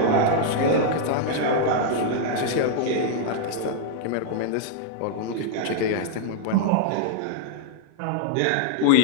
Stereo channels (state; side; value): different; both; correlation -0.01